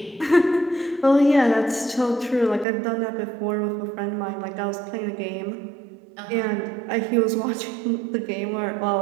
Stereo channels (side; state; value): left; drops out; at 2.7 s